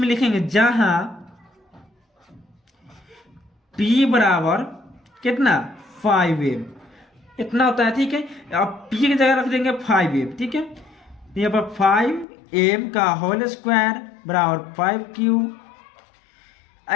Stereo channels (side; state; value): right; drops out; at 12.2 s